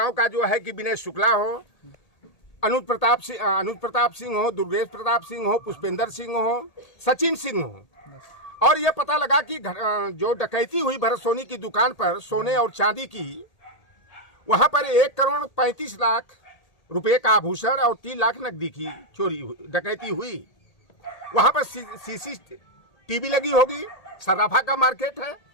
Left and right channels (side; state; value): right; late; 1.8 ms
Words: का जो है कि विनय शुक्ला हो, अनुज प्रताप सिंह हो, दुर्गेश प्रताप सिंह हो, पुष्पेंद्र सिंह हो, सचिन सिंह हो। और ये पता लगा कि जो डकैती हुई भरत सोनी की दुकान पर सोने और चांदी की, वहां पर 1,35,00,000 रुपए का आभूषण और 3 लाख नकदी की डकैती हुई। वहां पर CCTV लगी होगी, सराफा का मार्केट है,